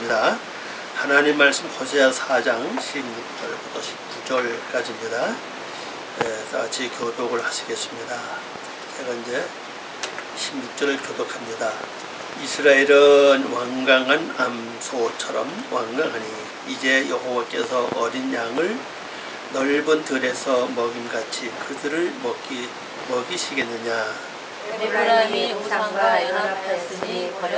하나님 말씀 호세아 4장 16절부터 19절까지입니다. 다 같이 교독을 하시겠습니다. 제가 이제 16절을 교독합니다. 이스라엘은 완강한 암소처럼 완강하니 이제 여호와께서 어린 양을 넓은 들에서 먹임같이 그들을 먹이시겠느냐. 에브라임이 우상과 연합하였으니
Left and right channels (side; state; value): both; identical; correlation 1.00